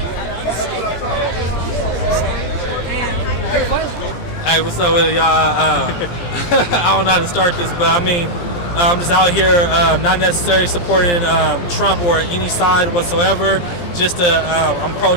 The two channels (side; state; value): right; late; 17 ms